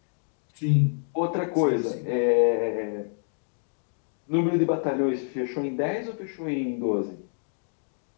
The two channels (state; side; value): silent; right; digital silence